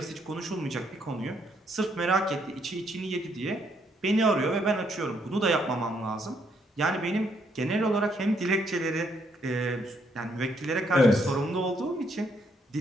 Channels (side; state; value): both; normal; correlation 0.72